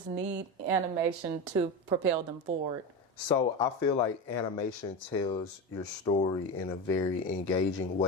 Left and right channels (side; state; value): both; normal; correlation 0.20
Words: need animation to propel them forward? So I feel like animation tells your story in a very engaging